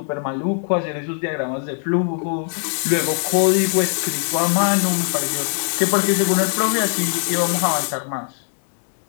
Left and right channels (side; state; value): right; silent; 64 dB below the other